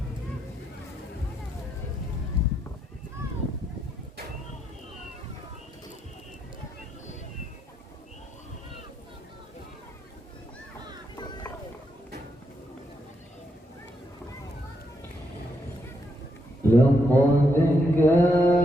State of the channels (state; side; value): normal; both; correlation 0.79